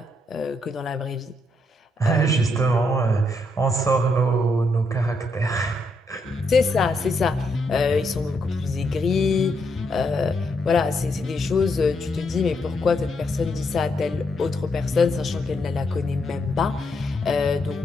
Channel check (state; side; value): normal; both; correlation 0.78